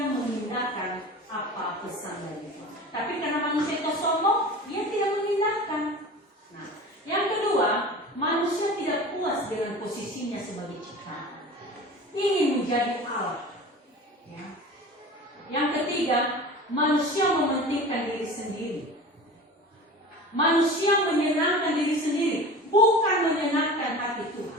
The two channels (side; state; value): both; normal; correlation 0.36